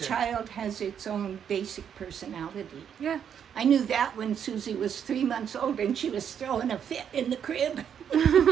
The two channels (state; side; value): quieter; left; 8.3 dB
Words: child has its own basic personality. Yeah. I knew that when Susie was 3 months old and she was throwing a fit in the crib.